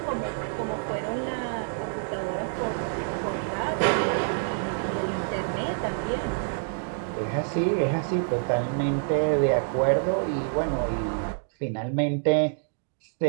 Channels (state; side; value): silent; left; digital silence